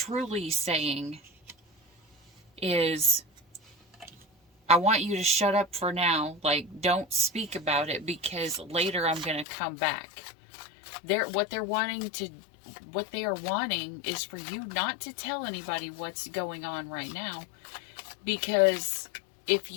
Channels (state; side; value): drops out; right; at 9.5 s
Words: saying is, I want you to shut up for now. Like, don't speak about it, because later I'm going to come back. What they are wanting is for you not to tell anybody what's going on right now. Because if